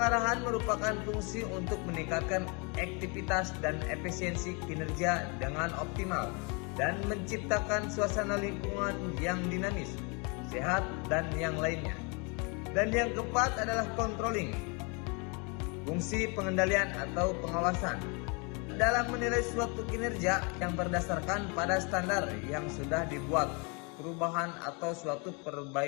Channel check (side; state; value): right; quieter; 32.3 dB